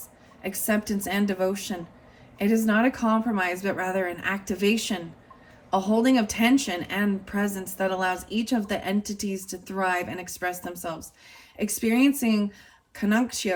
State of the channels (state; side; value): identical; both; correlation 1.00